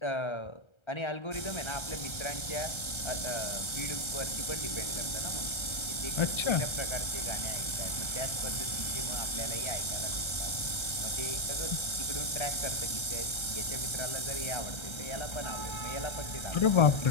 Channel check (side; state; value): right; late; 1.3 ms